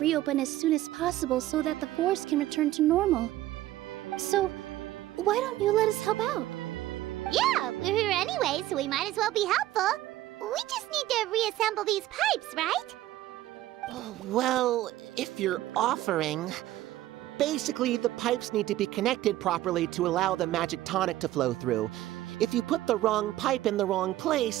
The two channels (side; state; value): left; quieter; 15.0 dB